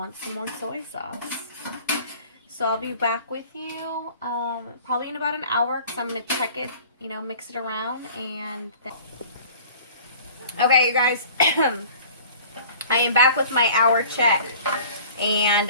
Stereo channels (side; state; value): both; inverted; correlation -0.47